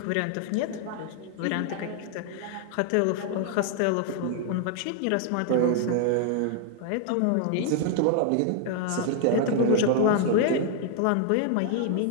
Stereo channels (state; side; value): different; both; correlation 0.00